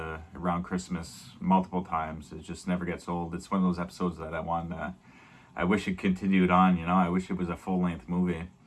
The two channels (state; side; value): identical; both; correlation 1.00